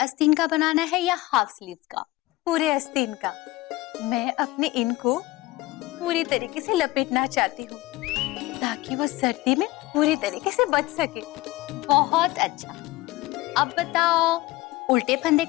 का बनाना है या हाफ स्लीव्स का? पूरे आस्तीन का। मैं अपने इन को पूरी तरीके से लपेटना चाहती हूँ ताकि वो सर्दी में पूरी तरीके से बच सके। बहुत अच्छा। अब बताओ, उल्टे फंदे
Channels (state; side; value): quieter; right; 19.2 dB